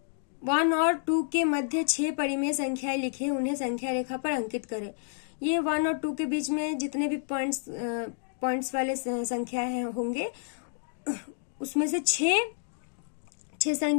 1 और 2 के मध्य 6 परिमेय संख्याएं लिखें, उन्हें संख्या रेखा पर अंकित करें। ये 1 और 2 के बीच में जितने भी पॉइंट्स वाले संख्याएं होंगे, उसमें से छह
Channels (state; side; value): silent; right; digital silence